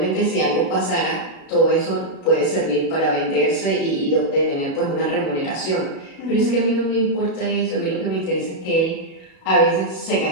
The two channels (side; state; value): right; late; 36 ms